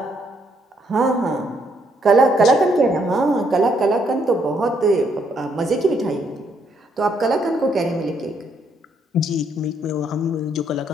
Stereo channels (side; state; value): both; normal; correlation 0.72